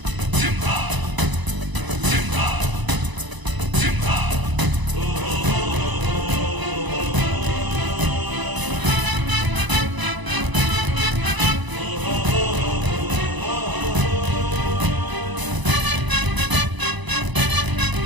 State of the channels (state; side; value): late; left; 1.0 ms